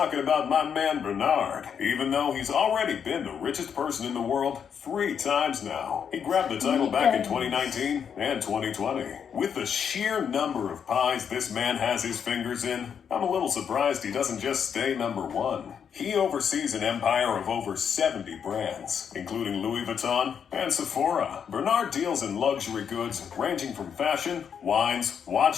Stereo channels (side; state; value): right; quieter; 7.5 dB